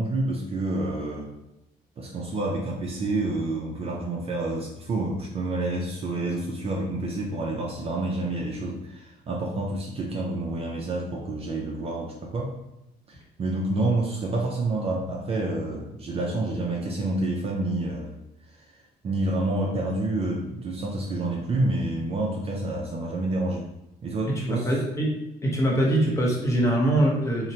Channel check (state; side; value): normal; both; correlation 0.64